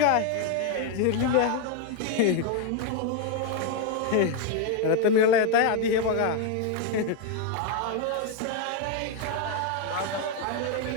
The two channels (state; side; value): different; both; correlation 0.01